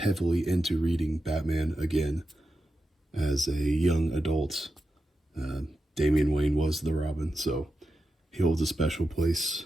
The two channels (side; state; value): both; normal; correlation 0.90